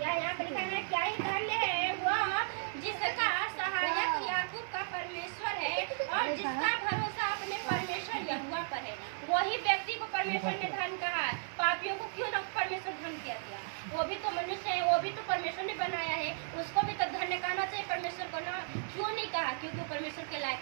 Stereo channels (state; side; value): silent; left; 55 dB below the other